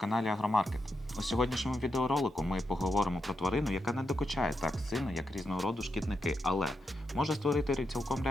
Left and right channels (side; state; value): both; normal; correlation 0.85